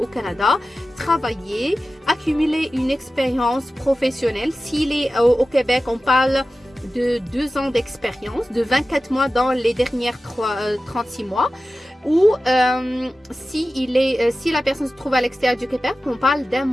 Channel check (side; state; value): both; normal; correlation 0.95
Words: Canada, travailler, accumuler une expérience professionnelle. S'il est au Québec, on parle de 2 ans d'expérience, de 24 mois dans les dernières 36 mois. Ou si la personne se trouve à l'extérieur du Québec, on parle d'1